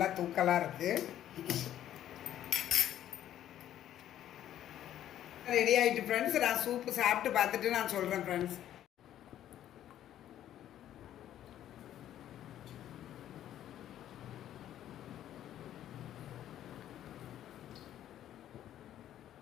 தூக்கலாக இருக்குது. ரெடி ஆகிட்டு ஃப்ரெண்ட்ஸ். நான் சூப்பு சாப்பிட்டு பார்த்துட்டு நான் சொல்கிறேன் ஃப்ரெண்ட்ஸ்.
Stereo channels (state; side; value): quieter; right; 11.7 dB